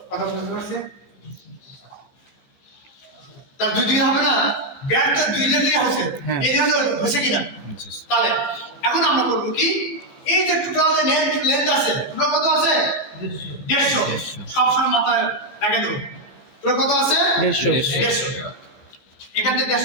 কথা বুঝতে পারছে, তার দুই দিকে হবে না, ব্যাটটা দুই দিকে আছে, হ্যাঁ। এই দিকে হচ্ছে কিনা, তাহলে এখন আমরা করবো কি, এই যে টোটাল যে লেন্থ আছে, টোটাল কত আছে 150, সবসময় মাথায় রেখে দেবো, টোটাল কত আছে 150। 150, এখান থেকে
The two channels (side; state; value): right; late; 14 ms